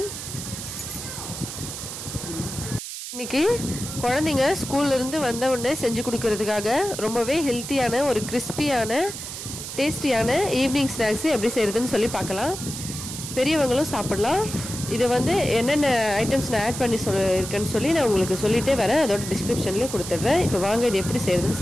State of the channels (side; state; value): right; noise; hiss, 8 dB below the sound